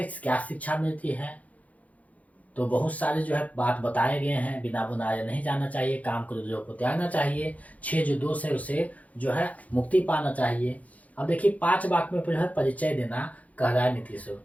क्या शिक्षा मिलती है। तो बहुत सारे जो है बात बताए गए हैं, बिना बुनाए नहीं जाना चाहिए, काम क्रोध को त्यागना चाहिए, 6 जो दोष है उसे जो है मुक्ति पाना चाहिए। अब देखिए 5 वाक्य में जो है परिचय देना कह रहा है नीतीश।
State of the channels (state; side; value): late; right; 0.071 ms